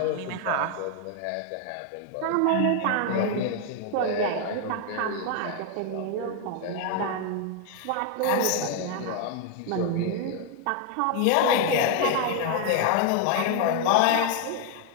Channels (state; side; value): different; both; correlation 0.01